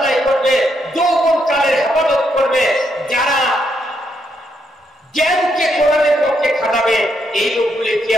করবে, যৌবন কালের হেফাজত করবে, যারা জ্ঞানকে কোরআনের পক্ষে খাটাবে, এই লোকগুলি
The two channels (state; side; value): normal; both; correlation 0.77